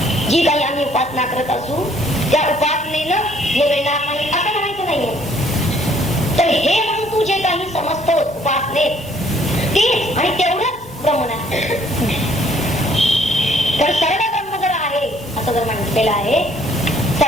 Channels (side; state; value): both; normal; correlation 0.62